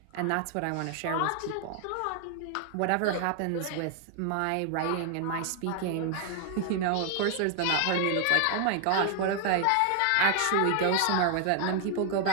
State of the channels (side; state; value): both; different; correlation 0.00